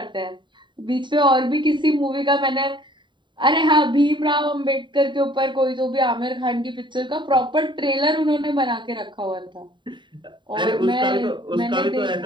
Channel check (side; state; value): left; late; 0.23 ms